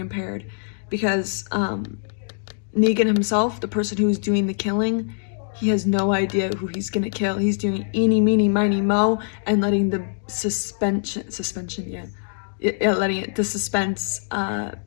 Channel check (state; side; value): silent; right; digital silence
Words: because Negan himself, the person who's doing the killing, he has no idea who he's gonna kill. He's doing eeny, meeny, miny, mo, and letting the the suspense